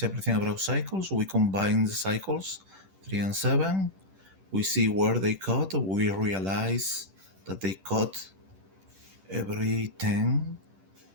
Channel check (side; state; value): left; late; 10 ms